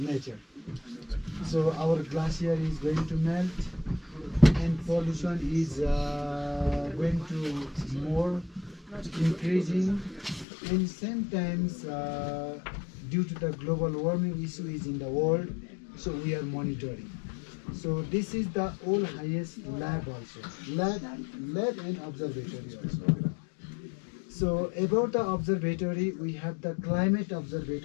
So our glacier is going to melt and pollution is going to more increasing, and sometimes due to the global warming issue is in the world, so we are monitoring. So this is the all highest lab also, lab and observatory also. So about the observatory, we have the climate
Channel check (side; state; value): right; drops out; at 10.5 s